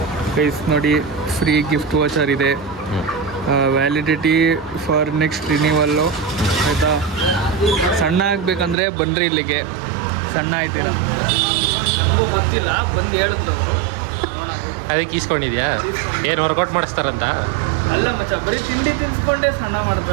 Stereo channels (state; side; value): drops out; left; at 8.8 s